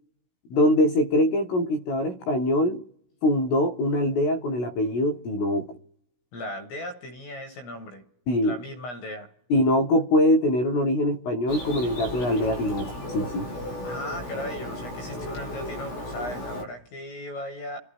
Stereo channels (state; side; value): late; right; 16 ms